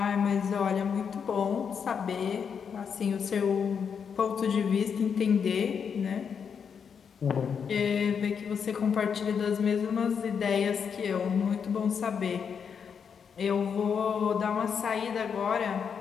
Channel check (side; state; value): right; quieter; 6.8 dB